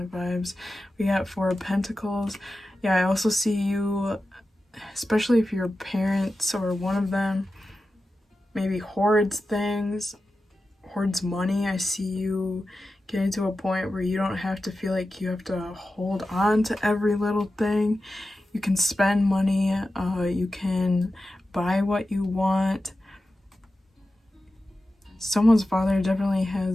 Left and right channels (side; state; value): both; normal; correlation 0.93